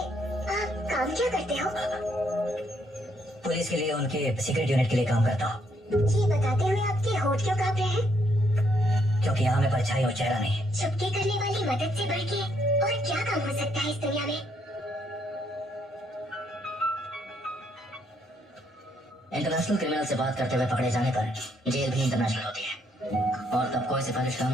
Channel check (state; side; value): normal; both; correlation 0.72